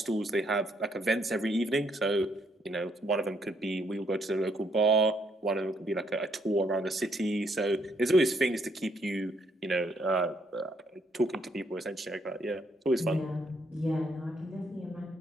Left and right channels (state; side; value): normal; both; correlation 0.72